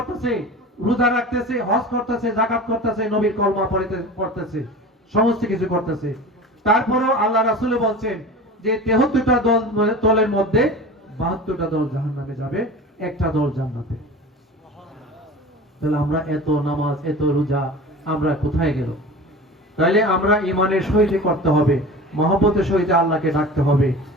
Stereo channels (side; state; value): both; normal; correlation 0.35